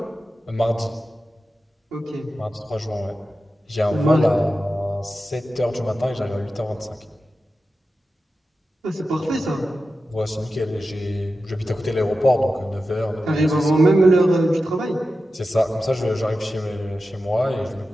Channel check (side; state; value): both; normal; correlation 0.92